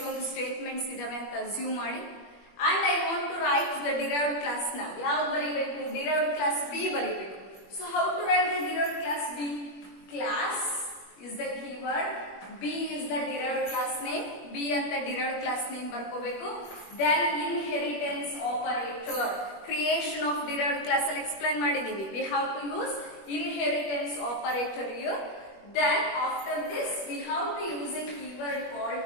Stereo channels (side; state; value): right; late; 21 ms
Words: statements ಇದಾವೆ ಅಂತ assume ಮಾಡಿ. And I want to write the derived class now. ಯಾವ ಬರೀಬೇಕು, derived class B ಬರೀಬೇಕು. So how to write the derived class B? Class is the keyword, B is the derived class name, B ಅಂತ derived class name ಬರ್ಕೋಬೇಕು. Then inheritance operator, creation of derived class ಅಲ್ಲಿ explain ಮಾಡಿದೀವಿ. We have to use inheritance operator here. Then after this we have to use a keyword called